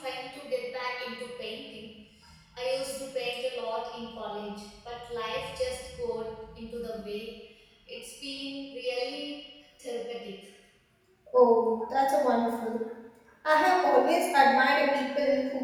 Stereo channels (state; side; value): identical; both; correlation 1.00